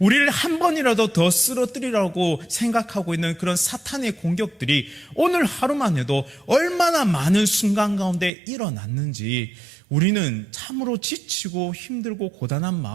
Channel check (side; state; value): left; drops out; at 8.3 s